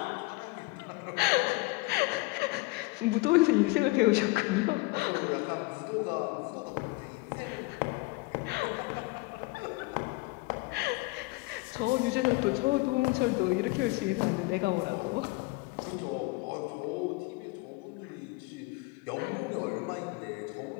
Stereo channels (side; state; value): right; quieter; 23.3 dB